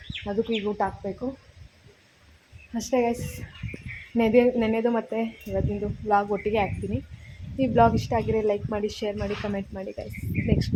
ಅದಕ್ಕೂ ಈಗ ಊಟ ಹಾಕಬೇಕು ಅಷ್ಟೇ ಗೈಸ್. ನೆನೆದು ಮತ್ತು ಇವತ್ತಿಂದು ವ್ಲಾಗ್ ಒಟ್ಟಿಗೆ ಹಾಕ್ತೀನಿ. ಈ ವ್ಲಾಗ್ ಇಷ್ಟ ಆಗಿರೋ ಲೈಕ್ ಮಾಡಿ, ಶೇರ್ ಮಾಡಿ, ಕಮೆಂಟ್ ಮಾಡಿ ಗೈಸ್. ನೆಕ್ಸ್ಟ್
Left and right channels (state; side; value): identical; both; correlation 1.00